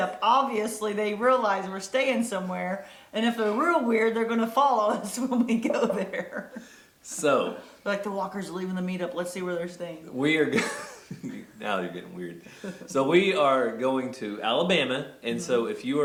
Obviously, they realize we're staying somewhere, and if they're real weird, they're going to follow us when we go there. So, like the walkers are leaving the meetup. Let's see where they're staying. We are now they're getting weird. So we are going to Alabama, and so if you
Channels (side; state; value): both; identical; correlation 1.00